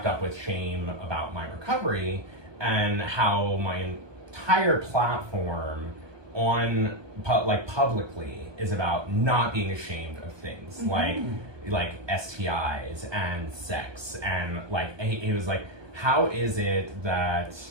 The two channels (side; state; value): left; late; 1.2 ms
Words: up with shame about my recovery and how my entire platform on publicly is about not being ashamed of things like STIs and sex, and like he was like, how is it that